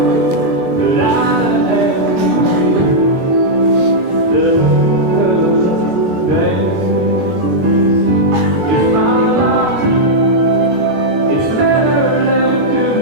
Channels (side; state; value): left; late; 22 ms